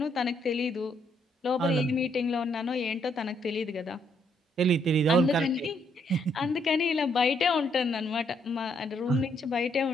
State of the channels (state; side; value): normal; both; correlation 0.72